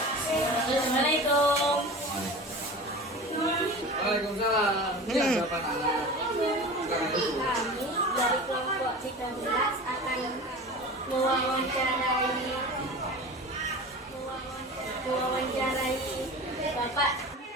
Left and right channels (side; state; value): both; normal; correlation 0.34